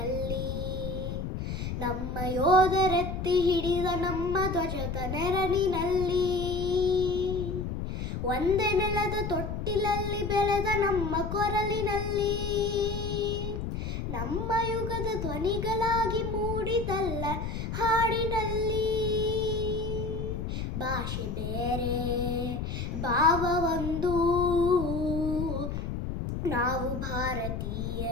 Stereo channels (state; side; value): noise; left; rumble, 4 dB below the sound